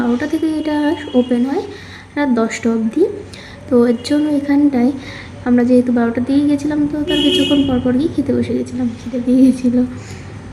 থেকে, এটা ওপেন হয় রাত 10টা অবধি। তো এর জন্য এখানটায় আমরা যেহেতু 12টার দিকে গেছিলাম, তো তার কিছুক্ষণ পর গিয়ে খেতে বসে গেছিলাম, খিদে পেয়ে গেছিলো।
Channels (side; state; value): both; identical; correlation 1.00